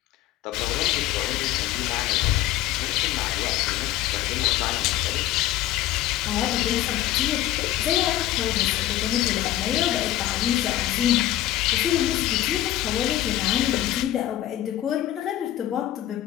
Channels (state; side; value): quieter; right; 13.9 dB